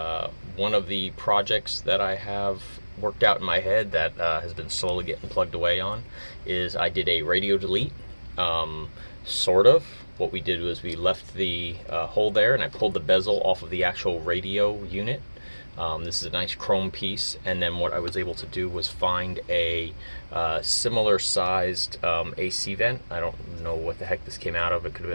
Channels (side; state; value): both; inverted; correlation -1.00